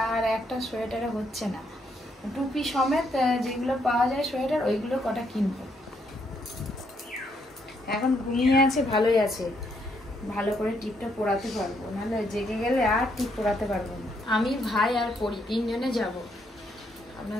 আর একটা সোয়েটারে হচ্ছে না, টুপি সমেত যেগুলো পাওয়া যায় সোয়েটার, ওইগুলো কটা কিনবো। এখন ঘুমিয়ে আছে, ভালোই আছে, ভালো করে টিপটা পরাতে পারবো, নাহলে জেগে গেলে আর টিপ পরাতে পারবো না। আমি, ভাই আর পরি 3 জনে যাব।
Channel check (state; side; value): normal; both; correlation 0.74